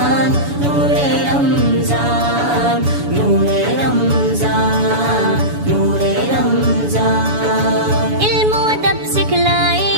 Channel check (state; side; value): late; left; 7.0 ms